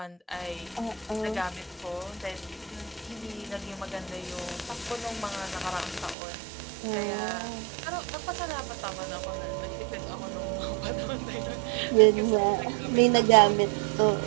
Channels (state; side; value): drops out; left; at 6.2 s